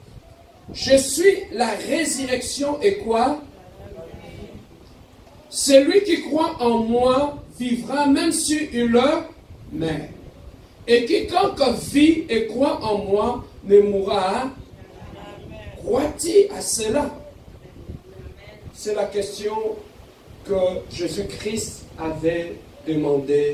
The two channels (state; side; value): identical; both; correlation 1.00